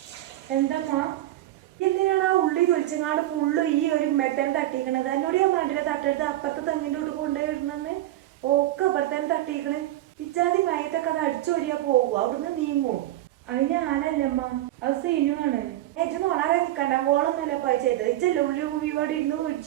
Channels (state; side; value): quieter; left; 14.9 dB